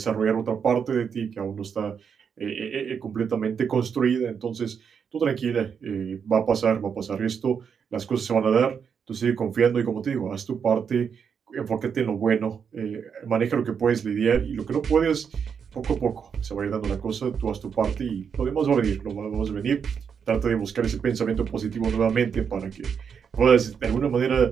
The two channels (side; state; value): left; quieter; 6.9 dB